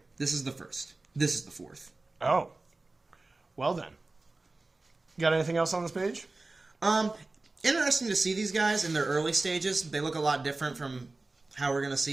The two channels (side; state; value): left; quieter; 3.3 dB